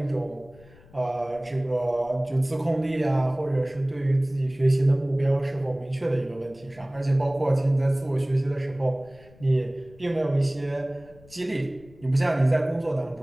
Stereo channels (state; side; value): noise; left; rumble, 24 dB below the sound